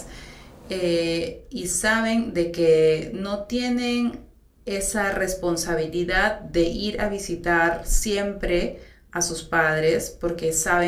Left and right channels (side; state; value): both; identical; correlation 1.00